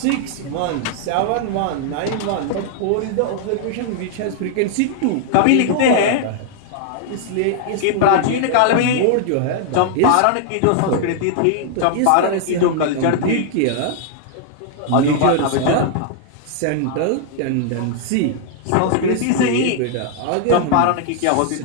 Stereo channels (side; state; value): both; different; correlation -0.01